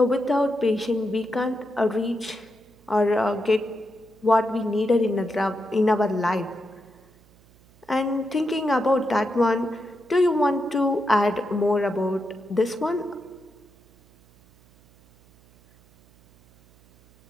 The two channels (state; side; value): noise; right; hum, 29 dB below the sound